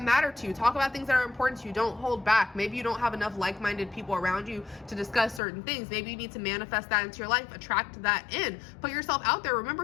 matter to you. Talk about things that are important to you. Don't hold back. Maybe you don't have enough like-minded people around you to discuss certain things. Maybe you need to manifest that into your life, attract that in, put yourself out there.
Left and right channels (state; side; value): drops out; right; at 5.4 s